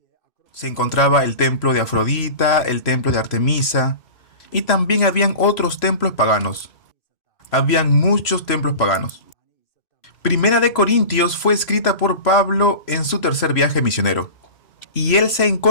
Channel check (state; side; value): late; right; 3.0 ms